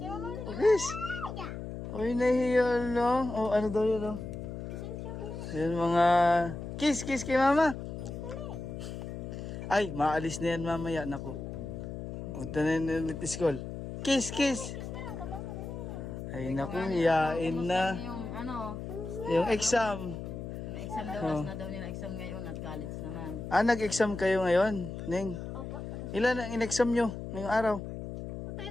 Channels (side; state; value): left; noise; hum, 8 dB below the sound